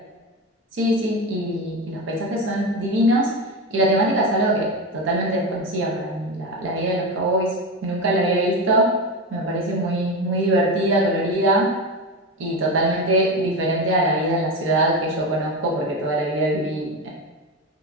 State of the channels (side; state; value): both; normal; correlation 0.19